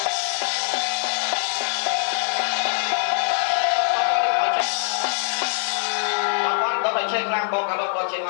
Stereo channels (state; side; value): silent; right; digital silence